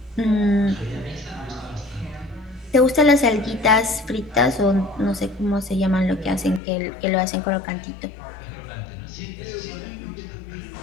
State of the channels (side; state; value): right; drops out; at 6.6 s